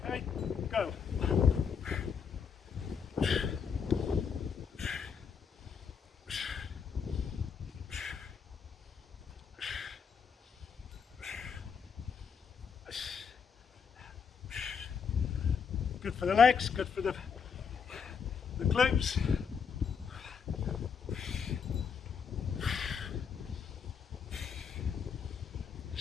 Okay, go. Good for the legs, good for the glutes.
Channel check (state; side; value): quieter; right; 6.5 dB